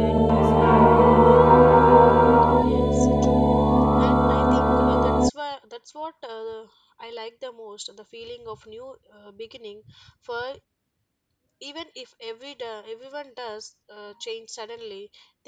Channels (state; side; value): identical; both; correlation 1.00